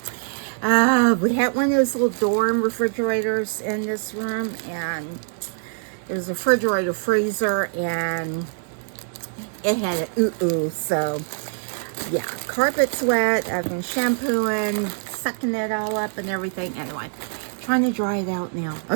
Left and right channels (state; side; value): silent; left; digital silence